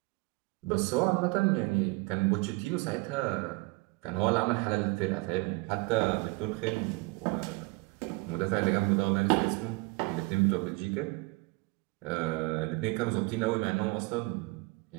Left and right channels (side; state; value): left; quieter; 25.6 dB